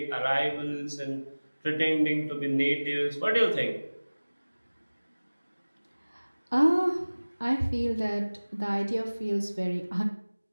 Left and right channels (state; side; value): inverted; both; correlation -1.00